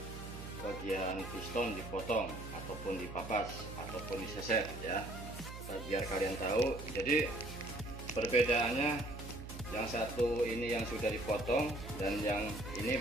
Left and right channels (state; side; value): noise; right; hum, 10 dB below the sound